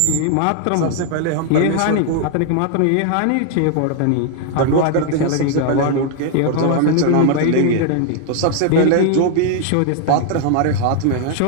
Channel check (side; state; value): both; different; correlation 0.00